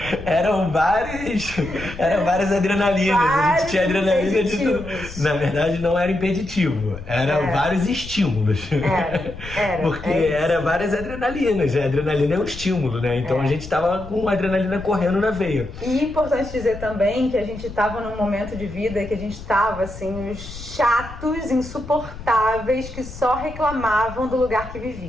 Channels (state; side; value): noise; left; rumble, 13 dB below the sound